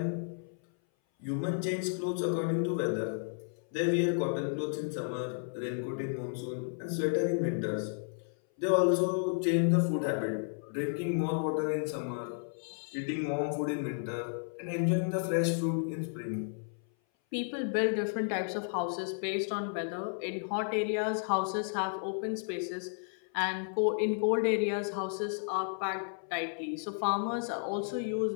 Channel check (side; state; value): right; silent; 56 dB below the other